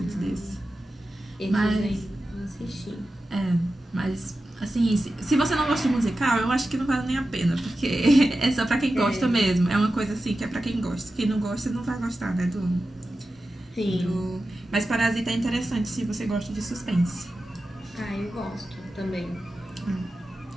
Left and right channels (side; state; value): both; normal; correlation 0.93